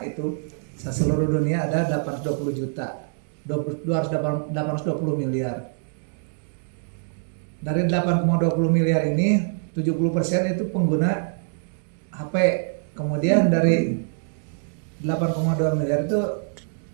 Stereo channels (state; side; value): silent; left; digital silence